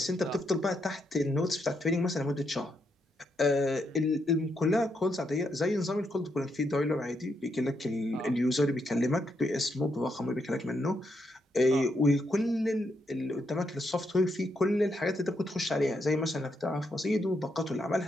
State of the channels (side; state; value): both; normal; correlation 0.79